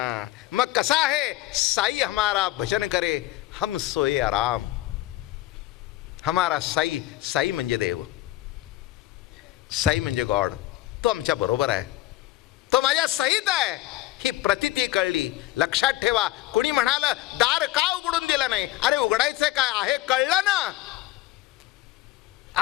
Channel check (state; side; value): quieter; right; 16.3 dB